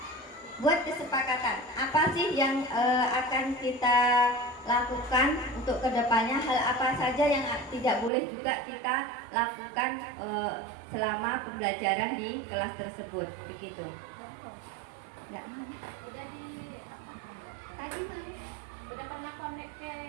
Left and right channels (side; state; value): left; drops out; at 8.1 s